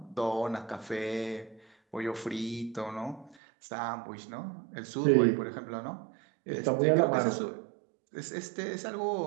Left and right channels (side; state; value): left; drops out; at 3.4 s